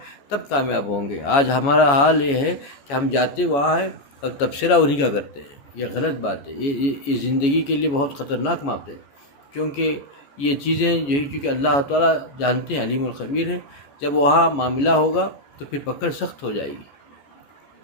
تب کامیاب ہوں گے۔ آج ہمارا حال یہ ہے کہ ہم جاتے وہاں ہیں اور تبصرہ انہی کا کرتے ہیں، یہ غلط بات ہے، یہ زندگی کے لیے بہت خطرناک بات ہے، کیونکہ یہ چیزیں یہی چونکہ اللہ تعالیٰ جانتے ہیں، علیم الخبیر ہے، جب وہاں معاملہ ہوگا تو پھر پکڑ سخت ہو جائے گی،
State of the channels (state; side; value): late; right; 14 ms